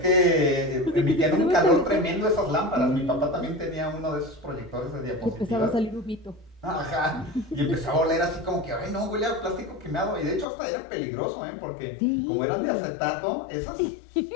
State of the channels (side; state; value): right; drops out; at 10.5 s